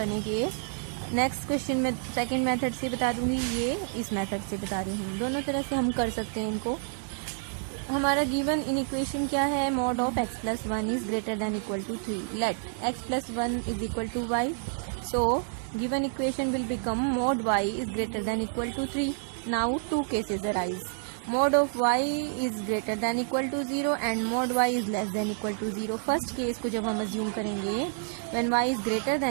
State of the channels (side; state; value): left; silent; 59 dB below the other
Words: के. Next question में second method से बता दूंगी, ये इस मेथड से बता रही हूँ. दोनों तरह से हम कर सकते हैं इनको. हमारा गिवन इन इक्वेशन क्या है? mod of x plus 1 is greater than equal to 3. Let x plus 1 is equal to y. So given equation will become mod y is greater than equal to 3. Now two cases arise. Mod of y is greater than equal to 0 and mod y is less than equal to 0. First case को जब हम assume करेंगे when y is greater